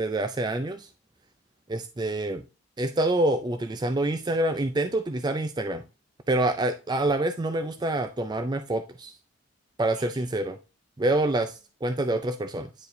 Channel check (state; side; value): normal; both; correlation 0.56